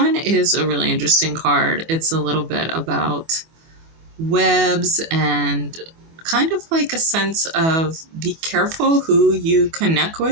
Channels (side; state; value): left; late; 24 ms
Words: is a really interesting card. It's a little bit about webs and kind of like a sense of be careful who you connect